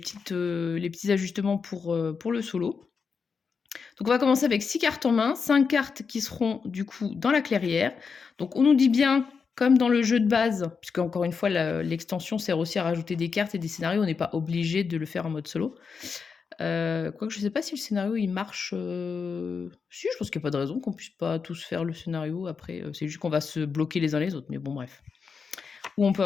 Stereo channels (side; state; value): right; quieter; 5.6 dB